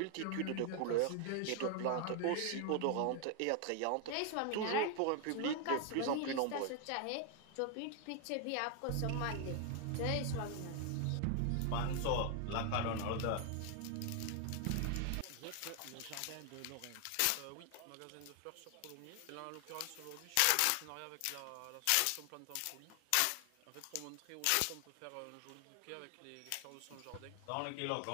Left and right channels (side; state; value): both; different; correlation 0.00